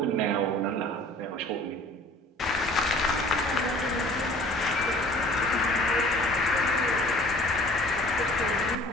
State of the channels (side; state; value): both; normal; correlation 0.49